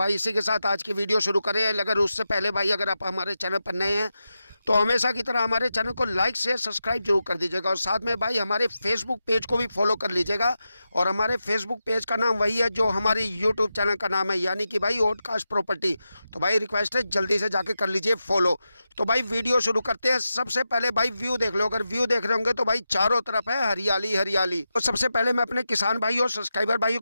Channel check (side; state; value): both; inverted; correlation -0.90